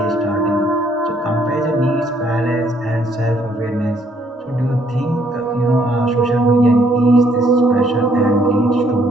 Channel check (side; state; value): both; normal; correlation 0.67